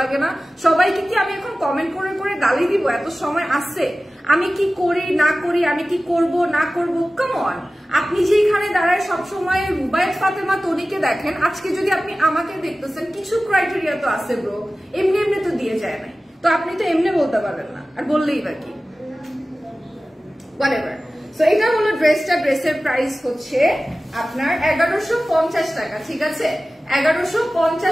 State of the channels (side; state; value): both; normal; correlation 0.96